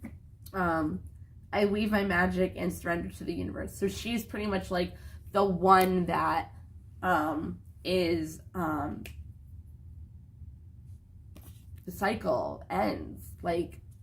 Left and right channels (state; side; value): identical; both; correlation 1.00